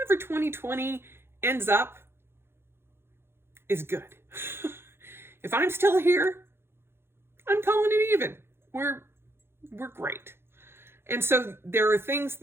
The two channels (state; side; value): late; left; 0.11 ms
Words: 2020 ends up is good. If I'm still here, I'm calling it even. We're great. And so there are things